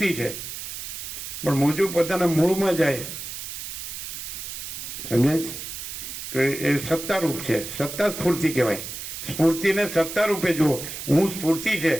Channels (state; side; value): noise; right; hiss, 8 dB below the sound